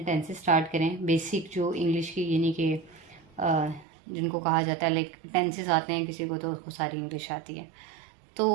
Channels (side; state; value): left; drops out; at 3.9 s